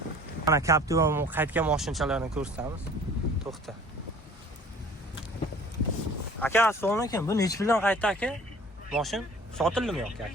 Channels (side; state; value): both; normal; correlation 0.49